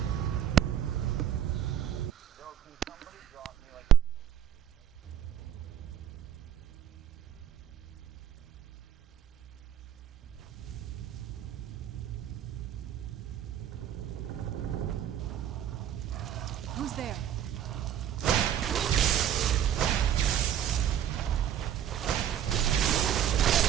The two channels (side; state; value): left; quieter; 10.2 dB